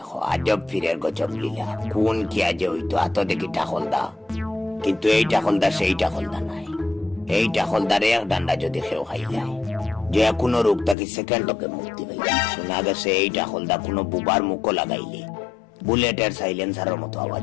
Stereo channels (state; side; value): drops out; right; at 11.0 s